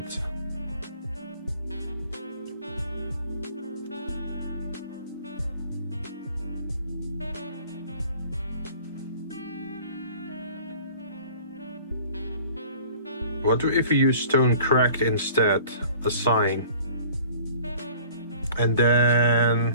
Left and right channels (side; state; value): both; inverted; correlation -0.49